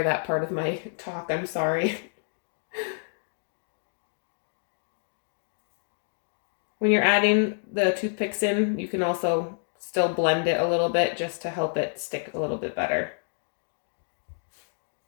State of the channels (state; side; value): silent; right; digital silence